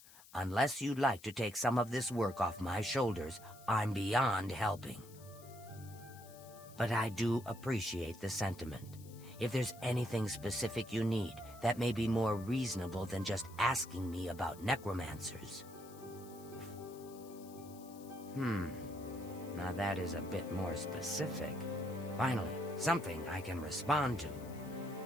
Unless you'd like to take some of this work off my shoulders, I'm beyond helping. But I do appreciate the sentiment. If there's anything specific you need, that may be more reasonable than just asking me about necromancers. Now that is a bit more specific. Finally, something I can respond to.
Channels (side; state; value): left; noise; hiss, 21 dB below the sound